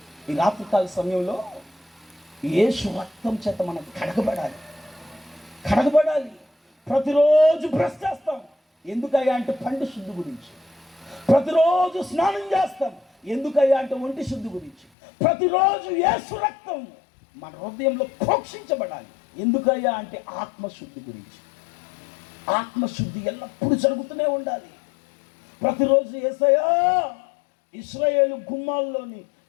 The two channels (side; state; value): right; drops out; at 14.9 s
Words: ఈ రాత్రికాల సమయంలో యేసు రక్తం చేత మనం కడగబడాలి. ప్రతిరోజు బ్రష్ చేస్తాం, ఎందుకయ్యా అంటే పండు శుద్ధి గురించి. ప్రతిరోజు స్నానం చేస్తాం, ఎందుకయ్యా అంటే ఒంటి శుద్ధి గురించి. ప్రతిరోజు యేసు రక్తం మన హృదయంలో ప్రోక్షించబడాలి, ఎందుకయ్యా అంటే ఆత్మశుద్ధి గురించి. ఆత్మశుద్ధి ఎల్లప్పుడూ జరుగుతూనే ఉండాలి. ప్రతిరోజు యేసయ్యా, ఇశ్రాయేలు గుమ్మాల్లోని